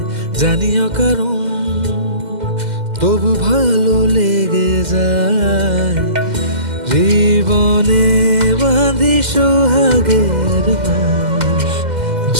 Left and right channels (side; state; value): left; late; 2.1 ms